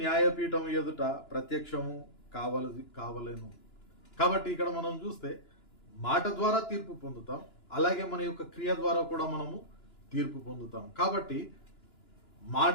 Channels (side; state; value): right; late; 2.9 ms